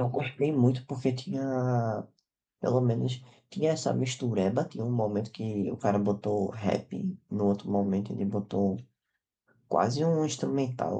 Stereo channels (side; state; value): both; identical; correlation 1.00